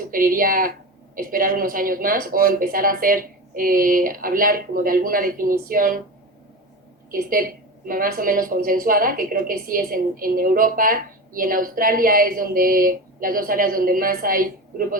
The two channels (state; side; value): normal; both; correlation 0.26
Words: esperar unos años más o empezar a hablar como de alguna definición que esté más o menos consensuada, que creo que sí es en Europa, y en Australia es las dos áreas donde más hay